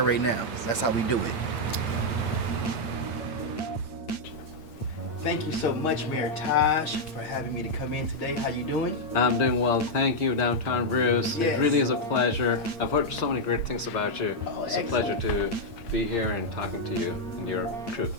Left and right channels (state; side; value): late; right; 8.8 ms